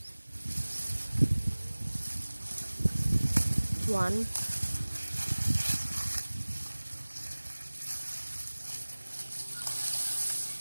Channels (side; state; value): both; inverted; correlation -1.00